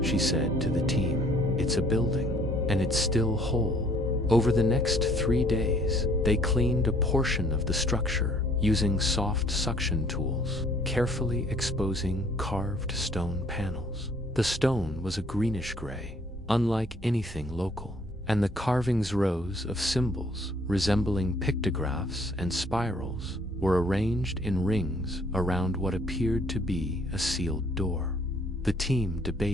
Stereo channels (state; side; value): normal; both; correlation 0.60